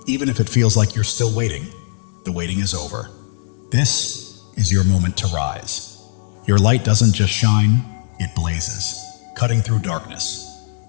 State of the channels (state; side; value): silent; right; digital silence